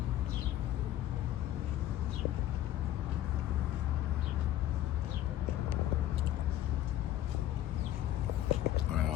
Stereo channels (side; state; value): right; quieter; 13.1 dB